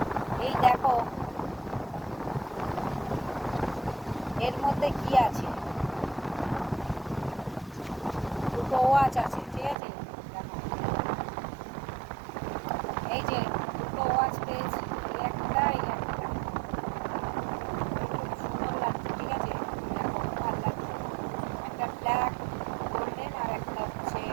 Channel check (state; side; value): drops out; left; at 9.8 s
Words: এই দেখো, এর মধ্যে কি আছে। দুটো ওয়াচ আছে, ঠিক আছে। দেখো, এই যে দুটো ওয়াচ পেয়েছি। এই একটা খুব সুন্দর লাগছে, ঠিক আছে। দেখো, ভালো লাগছে। একটা ব্ল্যাক গোল্ডেন আর একটা হচ্ছে